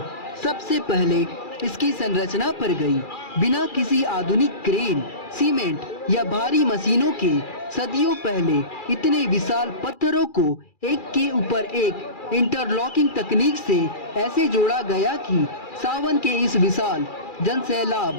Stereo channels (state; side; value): late; right; 2.4 ms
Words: सबसे पहले इसकी संरचना पर गई। बिना किसी आधुनिक क्रेन, सीमेंट या भारी मशीनों के सदियों पहले इतने विशाल पत्थरों को एक के ऊपर एक इंटरलॉकिंग तकनीक से ऐसे जोड़ा गया कि सावन के इस विशाल